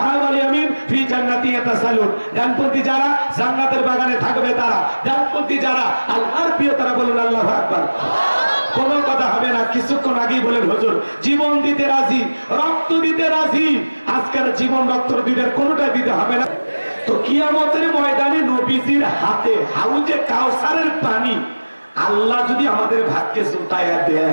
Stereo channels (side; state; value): both; inverted; correlation -1.00